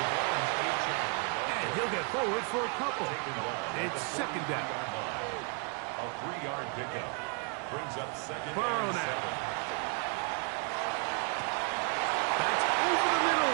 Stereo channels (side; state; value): left; quieter; 36.3 dB